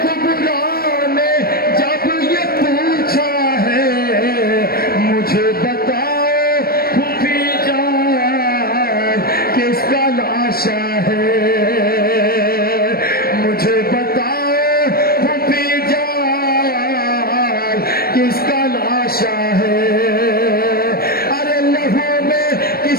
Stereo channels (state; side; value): late; right; 0.44 ms